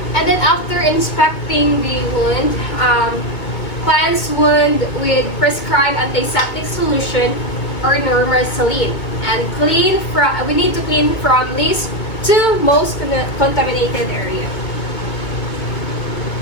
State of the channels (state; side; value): late; right; 2.2 ms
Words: And then, after inspecting the wound, cleanse wound with prescribed antiseptic solution or normal saline, and we need to clean from least to most contaminated area.